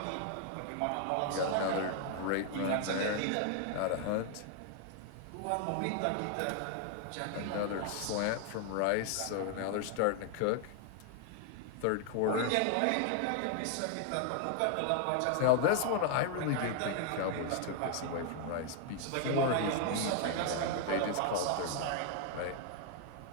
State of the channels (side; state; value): both; different; correlation 0.00